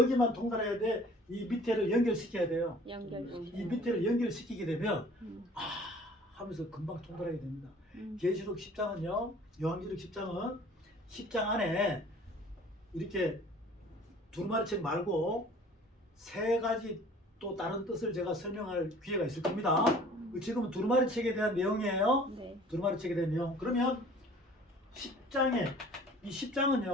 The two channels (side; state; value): both; normal; correlation 0.50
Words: 통달해야 돼. 이 밑에를 연결시켜야 돼요. 이 밑에를 연결시키게 되면 하면서 금방 통달하게 됩니다. 계시록 10장은요. 요한계시록 10장은 10장 안에 이렇게 두루마리책 말고 세 가지 또 다른 뜻을 제가 설명할 기회가 있을 겁니다. 지금은 두루마리책에 대한 내용이에요. 네. 두루마리책에 대한 내용. 그러면 10장에 이